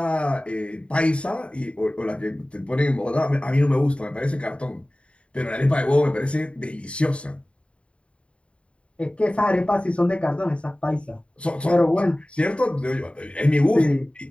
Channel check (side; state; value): right; late; 0.059 ms